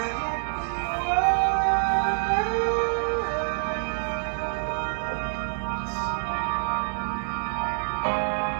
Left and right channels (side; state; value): left; silent; 60 dB below the other